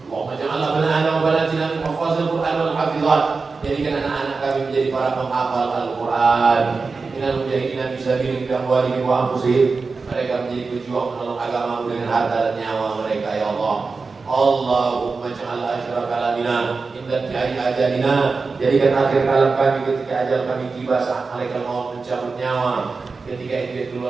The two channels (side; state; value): left; quieter; 4.3 dB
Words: Allahumma ja'alna banana wa banatina min hafazil Qur'an wal hafizat. Jadikan anak-anak kami menjadi para penghafal Al-Qur'an. Minal mujahidina fi sabilik bi amwalihim wa anfusihim. Mereka menjadi pejuang menolong agamamu dengan harta dan nyawa mereka ya Allah. Allahumma ja'al akhir kalamina inda tiari ajalina. Jadikan akhir kalam kami ketika ajal kami tiba, saat malaikat maut mencabut nyawa. Ketika itu